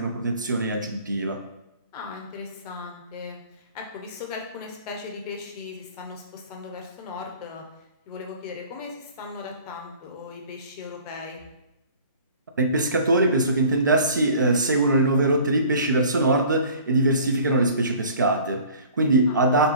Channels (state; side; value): inverted; both; correlation -0.48